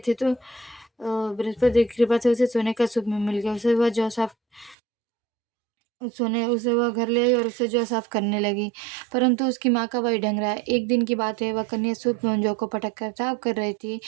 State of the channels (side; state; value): left; drops out; at 4.8 s